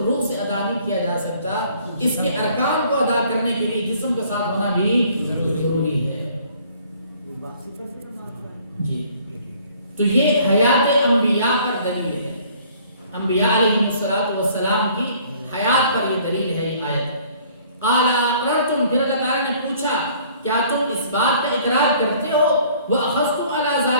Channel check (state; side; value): inverted; both; correlation -0.57